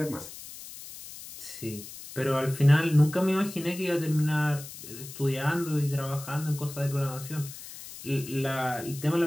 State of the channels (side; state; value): left; noise; hiss, 14 dB below the sound